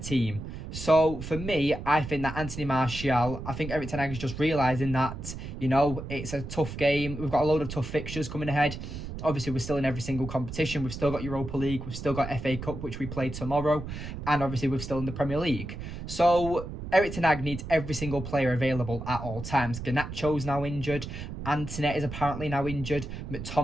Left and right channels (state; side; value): noise; right; rumble, 8 dB below the sound